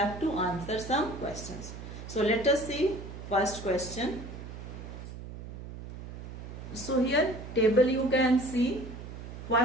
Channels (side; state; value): right; noise; hum, 11 dB below the sound